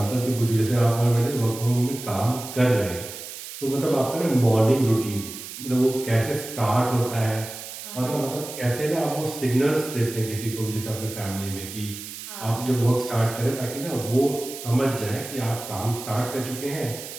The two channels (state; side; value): noise; right; hiss, 11 dB below the sound